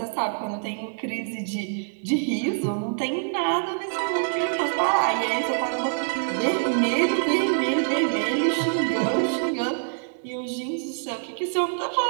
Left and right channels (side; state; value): left; silent; digital silence